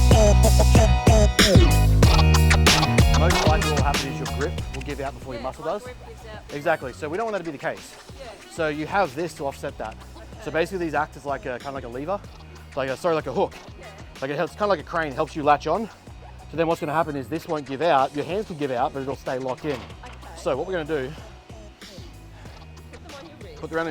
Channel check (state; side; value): identical; both; correlation 1.00